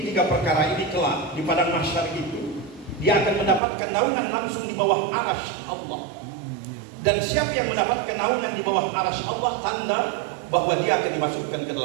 tiga perkara ini kelak di padang mahsyar itu, dia akan mendapatkan naungan langsung di bawah arasy Allah. Dan siapa yang mendapatkan naungan di bawah arasy Allah, tanda bahwa dia akan dimasukkan ke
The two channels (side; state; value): left; drops out; at 3.6 s